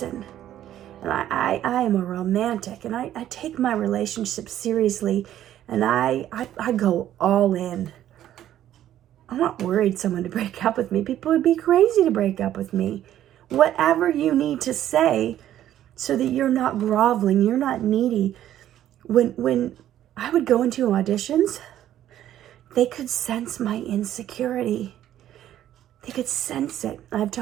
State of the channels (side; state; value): left; quieter; 12.0 dB